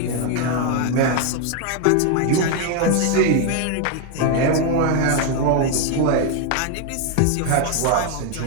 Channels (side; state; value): both; different; correlation 0.01